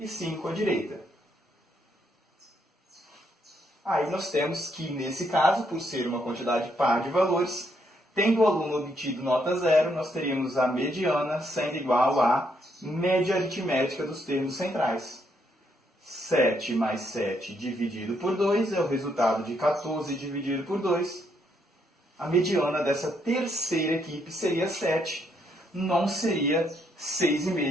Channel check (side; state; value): both; normal; correlation 0.74